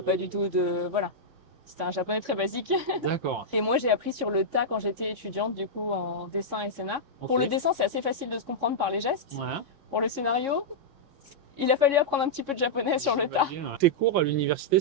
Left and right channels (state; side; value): late; left; 3.6 ms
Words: pas du tout de voilà. C'était un japonais très basique. D'accord. Et moi j'ai appris sur le tas quand j'étais étudiante du coup en dessin et scénar. Ok. Pour le dessin c'est assez facile de se comprendre par les gestes. Ouais. Pour le scénario, il a fallu apprendre un petit peu de japonais sur le tas. J'imagine. Tes cours à l'université,